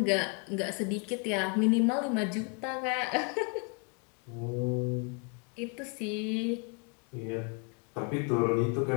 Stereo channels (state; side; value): quieter; right; 33.3 dB